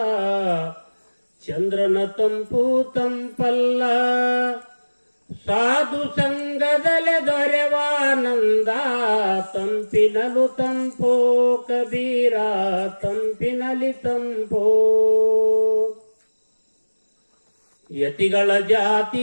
ಚಂದ್ರನ ತಂಪು ತಂಪಲ್ಲ. ಸಾಧು ಸಂಘದಲೆ ದೊರೆವಾನಂದ, ತಂಪಿನಲು ತಂಪೋ ಕಬೀರ, ತಂಪಿನಲಿ ತಂಪೋ. ಯತಿಗಳ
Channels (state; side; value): inverted; both; correlation -1.00